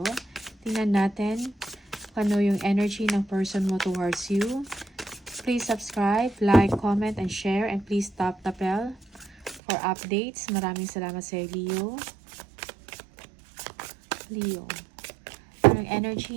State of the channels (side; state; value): left; drops out; at 9.6 s